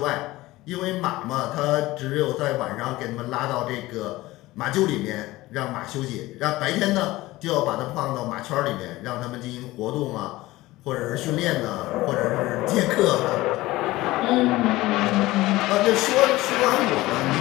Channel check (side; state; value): right; quieter; 18.4 dB